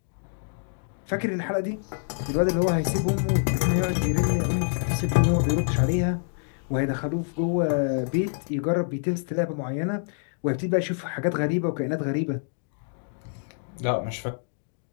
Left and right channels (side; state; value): right; silent; digital silence